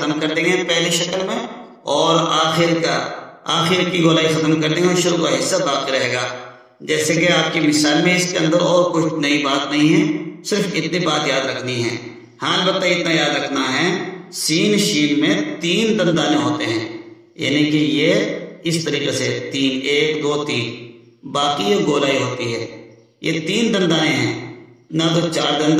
کر دیں گے پہلی شکل میں، اور آخر کی گولائی ختم کر دیں گے اور شروع کا حصہ باقی رہے گا. جیسے کہ آپ کی مثال میں اس کے اندر اور کچھ نئی بات نہیں ہے، صرف اتنی بات یاد رکھنی ہے. ہاں البتہ اتنا یاد رکھنا ہے سین شین میں 3 دندانے ہوتے ہیں، یعنی کہ یہ اس طریقے سے 3 1 2 3، باقی یہ گولائی ہوتی ہے. یہ 3 دندانے ہیں، نہ تو 4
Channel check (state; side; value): identical; both; correlation 1.00